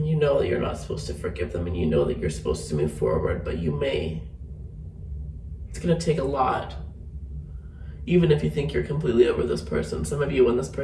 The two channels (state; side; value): identical; both; correlation 1.00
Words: you know that you're not supposed to forgive them, and you know that you're supposed to move forward, but you may. It's going to take a lot. Even if you think you're completely over this person, some of you, when this